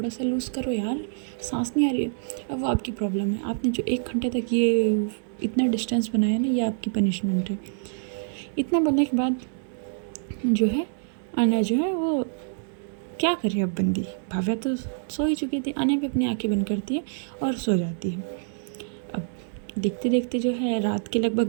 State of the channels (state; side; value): silent; left; digital silence